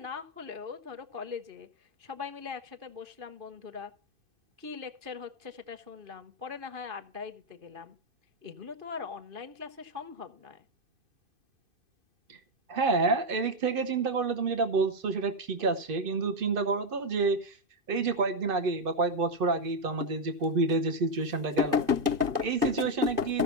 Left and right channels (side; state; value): left; late; 2.5 ms